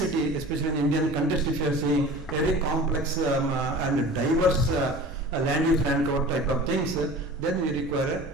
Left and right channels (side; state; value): both; normal; correlation 0.40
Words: especially in Indian context, if you are seeing very complex and diverse land use land cover type of things, then we